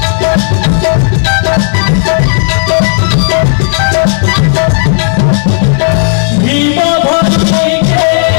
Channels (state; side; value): silent; right; digital silence